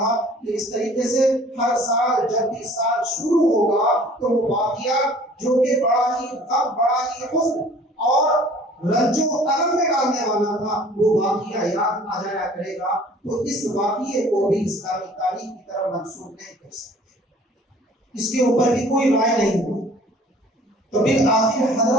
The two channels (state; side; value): normal; both; correlation 0.51